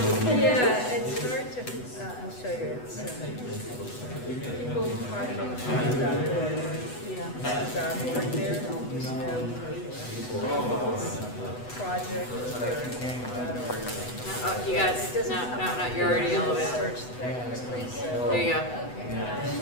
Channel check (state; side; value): late; right; 8.1 ms